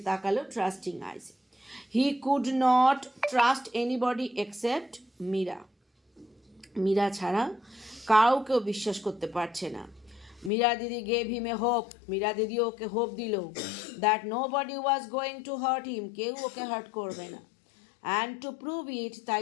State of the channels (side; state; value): right; drops out; at 10.5 s